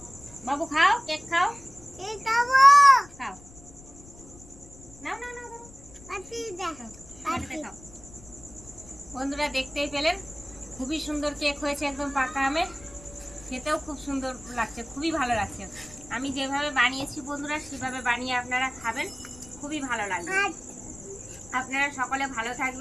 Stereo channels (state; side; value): noise; left; rumble, 21 dB below the sound